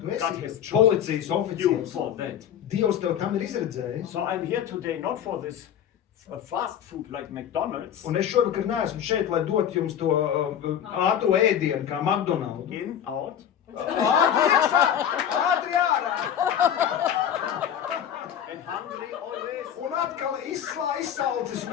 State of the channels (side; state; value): right; quieter; 9.5 dB